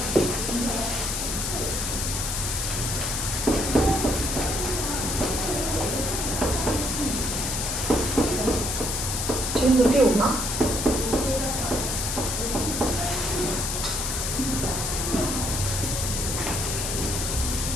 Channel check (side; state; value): left; noise; hiss, 2 dB below the sound